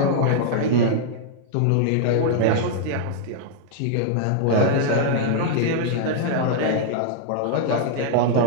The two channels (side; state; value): both; different; correlation -0.01